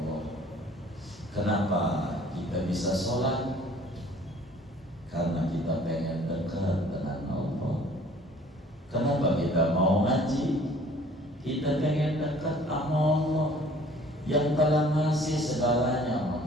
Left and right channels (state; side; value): normal; both; correlation 0.53